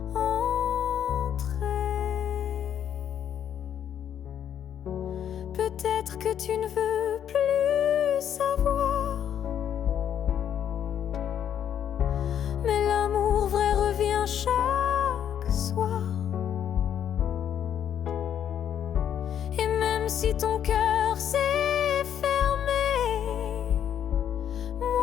ton cœur s'est fermé,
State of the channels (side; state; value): right; quieter; 9.5 dB